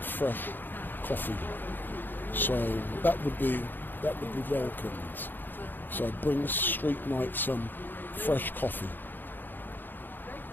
coffee? So that would be welcomed. So bring Street Mike some fresh coffee.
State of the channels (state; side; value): late; right; 0.092 ms